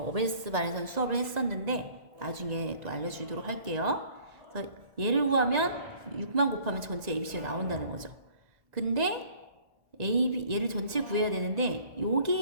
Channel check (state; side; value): late; left; 1.9 ms